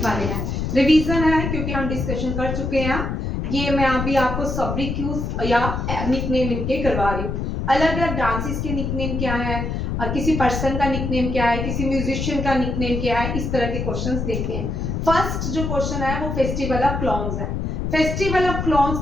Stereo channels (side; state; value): left; noise; rumble, 2 dB below the sound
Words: वाले हैं। रिवीजन है क्योंकि हम डिस्कशन कर चुके हैं। ये मैं अभी आपको सब्रिक्यूज या निकनेम इनके करवा रही हूँ। अलग अलग डांसेस के निकनेम क्या है, किसी पर्सन का निकनेम क्या है, किसी म्यूजिशियन का निकनेम क्या है, इस तरह के क्वेश्चंस देखते हैं। फर्स्ट जो क्वेश्चन है वो फेस्टिवल ऑफ क्लाउन्स है। फेस्टिवल ऑफ क्लाउन्स